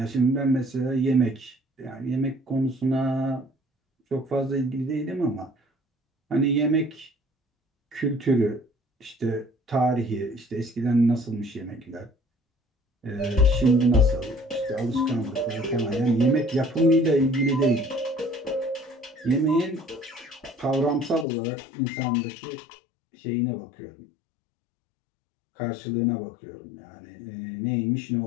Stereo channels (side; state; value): right; drops out; at 21.2 s